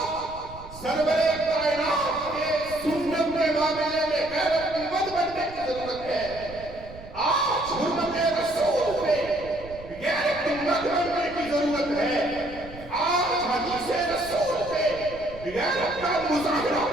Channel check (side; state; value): right; noise; rumble, 17 dB below the sound